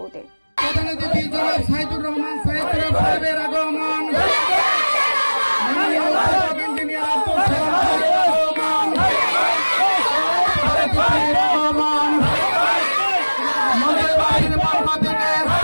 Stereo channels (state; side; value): inverted; both; correlation -1.00